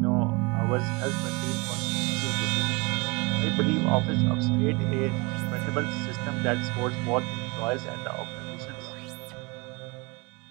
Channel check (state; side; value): quieter; left; 27.2 dB